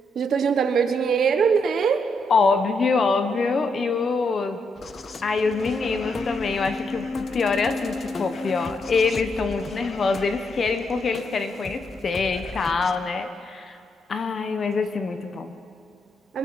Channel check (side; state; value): both; normal; correlation 0.78